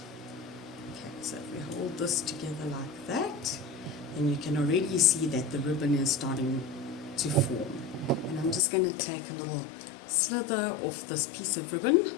Okay, so if we hold this together like that, then you can already see that the ribbon is starting to form. And I'm just going to take a little slither off this piece of ribbon.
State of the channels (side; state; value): right; drops out; at 8.6 s